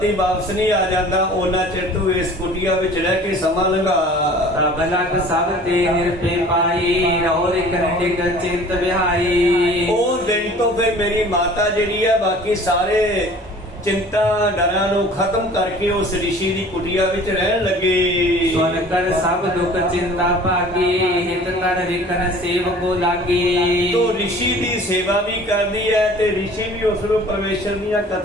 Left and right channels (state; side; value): normal; both; correlation 0.47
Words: वापस नहीं आ जाता उन्ना चिर तू इस कुटिया विच रह के समा लंघा। रब लग सब ते निरपे पाई रौर कंडिक चिंत विहाई। ਉਹ ਦਿਨ ਤੋਂ ਫਿਰ ਮੇਰੀ ਮਾਤਾ ਜਿਹੜੀ ਹੈ ਬਾਕੀ ਸਾਰੇ चिंता डरां नूं खत्म करके उस ऋषि की कुटिया विच रहन लगे। सुन कर सब दुख चिंता भागी हित कर रिकन सेवको लागी। तो ऋषि की सेवा भी करती है ते ऋषि भी उसनूं परमेश्वर दीयां